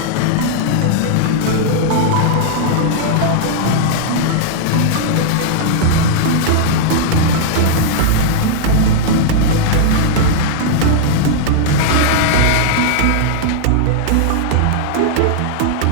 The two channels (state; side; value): different; both; correlation -0.01